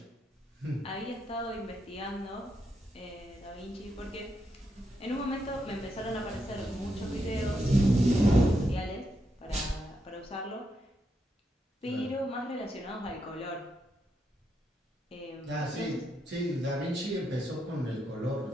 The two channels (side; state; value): both; normal; correlation 0.82